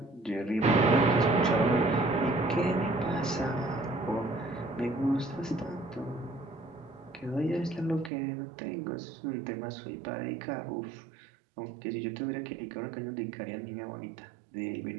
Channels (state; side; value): drops out; left; at 8.1 s